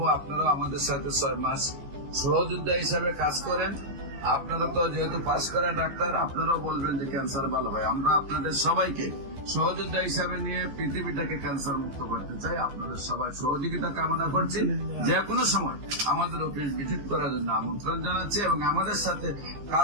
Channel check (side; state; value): left; late; 15 ms